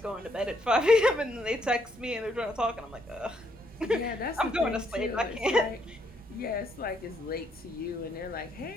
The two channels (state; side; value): normal; both; correlation 0.72